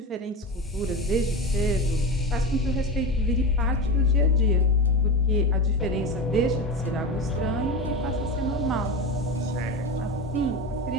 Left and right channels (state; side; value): normal; both; correlation 0.22